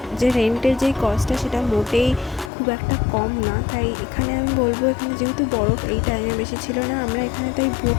যে রেন্টের যেই কস্টটা সেটা মোটেই খুব একটা কম না। তাই এখানে আমি বলবো, এখানে যেহেতু বরফ এই টাইমে বেশি ছিল না, আমরা এখানে তাই বুট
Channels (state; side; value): drops out; right; at 2.5 s